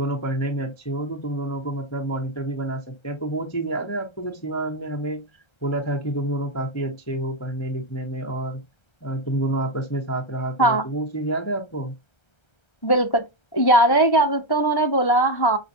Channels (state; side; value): late; right; 1.3 ms